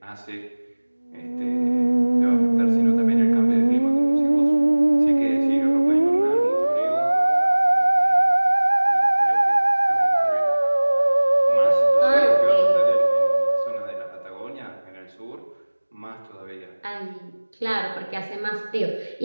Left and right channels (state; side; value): inverted; both; correlation -1.00